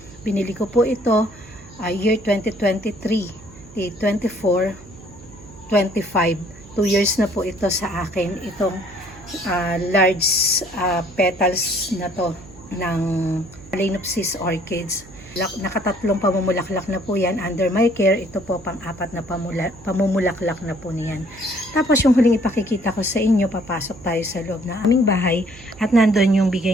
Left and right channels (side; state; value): right; noise; hum, 21 dB below the sound